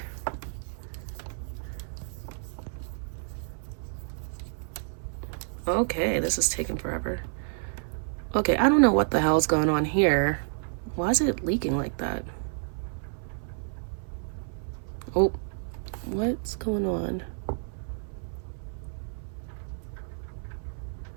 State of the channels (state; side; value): silent; left; 55 dB below the other